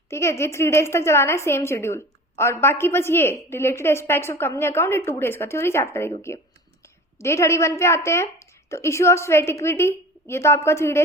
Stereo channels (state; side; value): normal; both; correlation 0.37